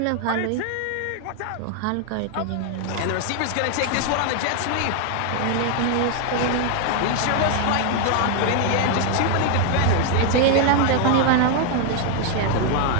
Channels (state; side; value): different; both; correlation 0.00